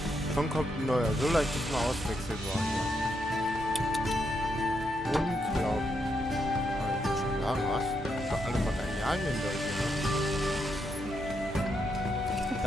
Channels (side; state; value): both; normal; correlation 0.80